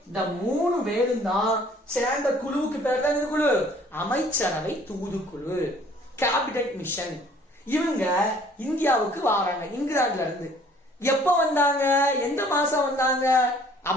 இந்த 3 பேரும் தான் சேர்ந்த குழுவுக்கு பேர் தான் இந்த குழு அமைச்சரவை தூதுக்குழு, கேபினெட் மிஷன். இவங்க இந்தியாவுக்கு வராங்க இங்கிலாந்துல இருந்து. எப்ப வந்தாங்க? எந்த மாசம் வந்தாங்க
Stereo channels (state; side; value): normal; both; correlation 0.56